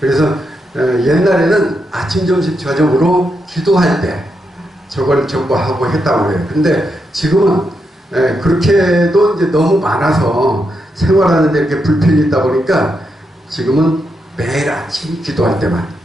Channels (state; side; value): normal; both; correlation 0.83